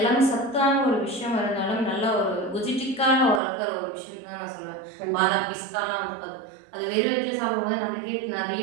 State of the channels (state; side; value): drops out; left; at 3.4 s